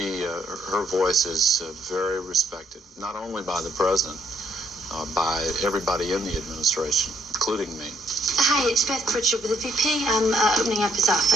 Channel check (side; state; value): both; normal; correlation 0.70